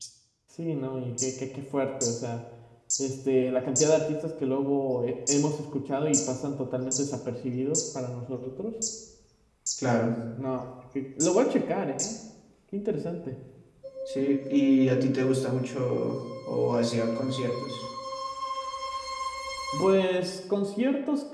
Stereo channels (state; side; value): identical; both; correlation 1.00